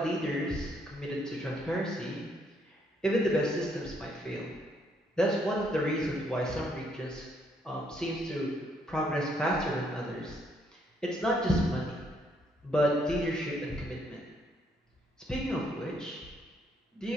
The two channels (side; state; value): both; normal; correlation 0.71